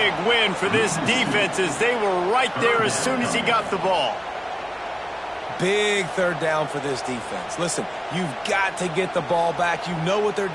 win for this defense as they were right there as soon as he got the ball. Big third down for this defense. Listen, you've got to get the ball back. You know what they're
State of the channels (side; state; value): both; identical; correlation 1.00